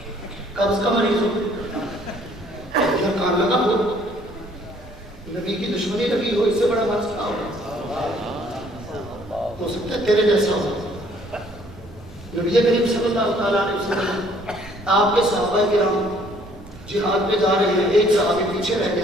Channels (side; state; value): right; noise; rumble, 20 dB below the sound